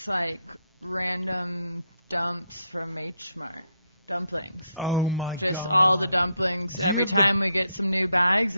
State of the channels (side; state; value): both; inverted; correlation -0.78